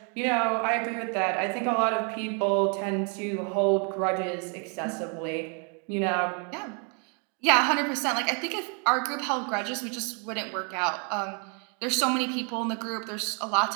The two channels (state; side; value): quieter; left; 37.7 dB